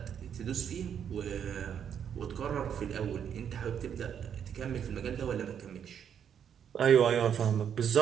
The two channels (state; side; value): quieter; left; 8.4 dB